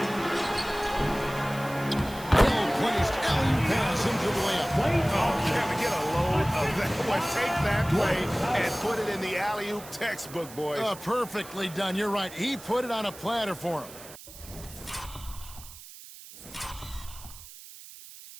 Well-placed alley pass into the layup. Oh, can we get a load of that one? Take that play and put it in the alley-oop textbook, boys. Perfectly done. You're right. He put it on a platter for him.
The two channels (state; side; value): noise; right; hiss, 16 dB below the sound